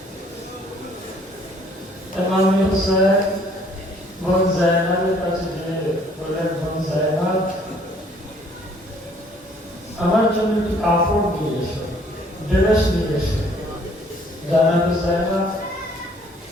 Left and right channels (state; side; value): normal; both; correlation 0.60